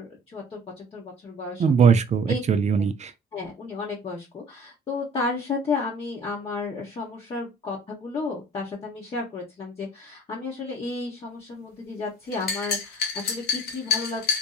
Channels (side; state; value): both; normal; correlation 0.51